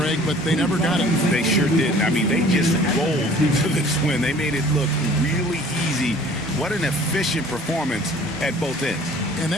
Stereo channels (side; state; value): both; normal; correlation 0.50